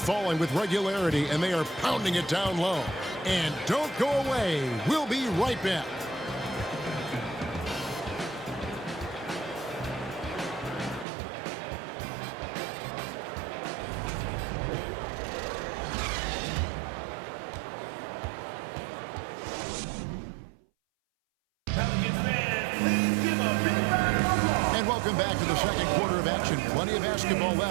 with regularity, and they are pounding it down low. And don't go away. We'll be right back. Welcome back to the second quarter of action. Plenty of basketball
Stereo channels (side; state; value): left; drops out; at 11.1 s